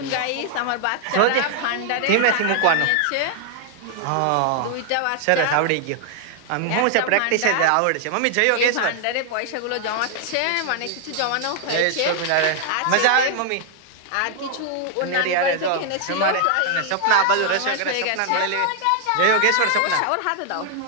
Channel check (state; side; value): different; both; correlation 0.00